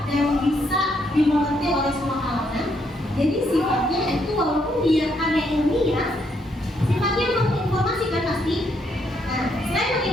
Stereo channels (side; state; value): both; normal; correlation 0.74